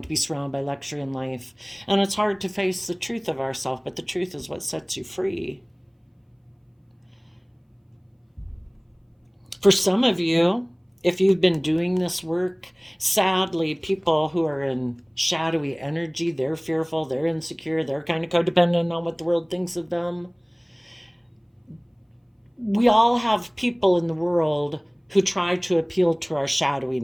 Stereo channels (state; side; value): identical; both; correlation 1.00